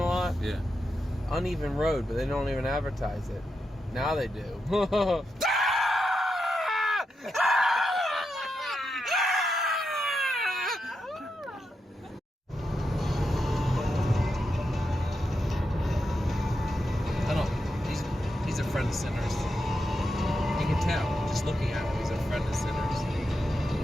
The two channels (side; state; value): both; normal; correlation 0.86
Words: lot? Yeah. Uneven road, but they don't even advertise it. Now they do.